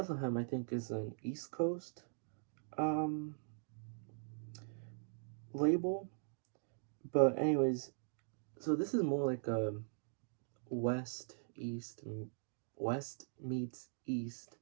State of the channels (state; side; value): silent; left; digital silence